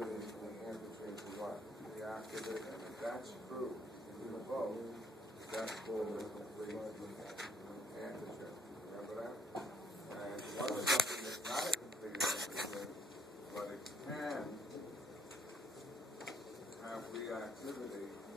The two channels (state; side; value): normal; both; correlation 0.65